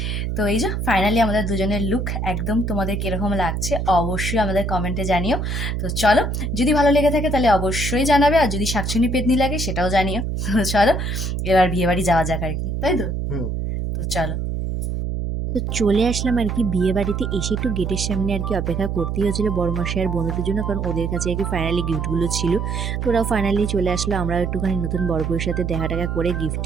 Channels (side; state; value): right; noise; hum, 2 dB below the sound